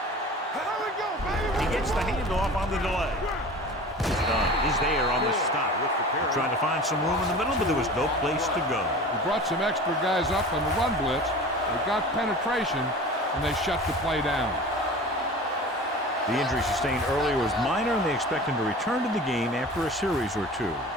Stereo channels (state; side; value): normal; both; correlation 0.38